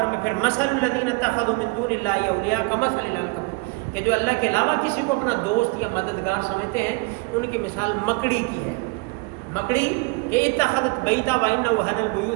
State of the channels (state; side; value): quieter; left; 27.7 dB